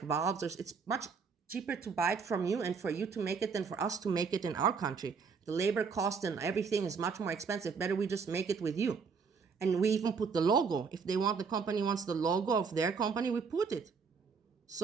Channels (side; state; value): left; quieter; 5.6 dB